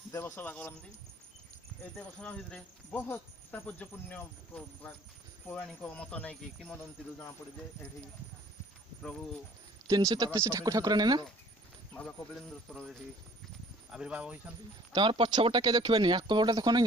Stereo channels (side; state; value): both; normal; correlation 0.53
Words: देवसभा करती ए देवसभा भितरे बहुत तात्पर्यपूर्ण पौराणिक मत नहीं कि किंवदंती जना पड़े जे एठी प्रभु 333 ठाकुर ठाकुर ना बाबा कपिलेन्द्र एठी आविर्भाव होइछंती तमर पछपटा के देखबेनी आकपटा देखो